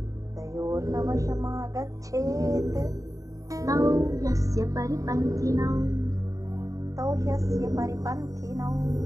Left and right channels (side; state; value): left; late; 0.16 ms